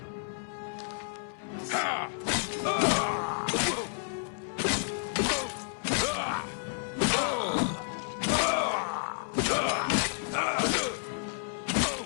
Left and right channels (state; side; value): silent; right; 57 dB below the other